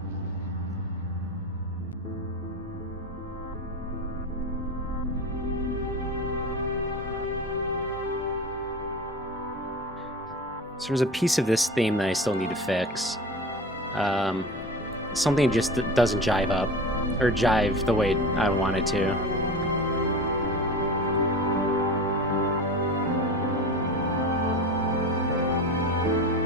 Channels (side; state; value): both; normal; correlation 0.31